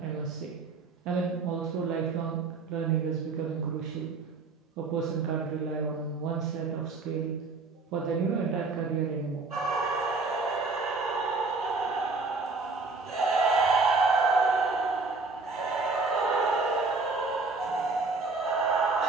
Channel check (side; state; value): left; quieter; 4.0 dB